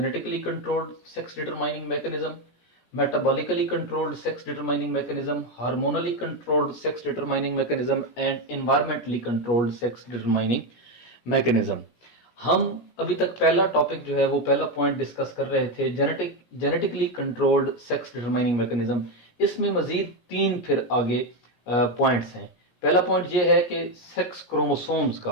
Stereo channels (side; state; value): right; late; 17 ms